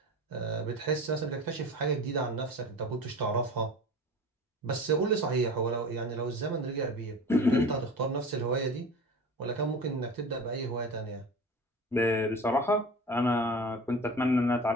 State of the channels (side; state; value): both; normal; correlation 0.35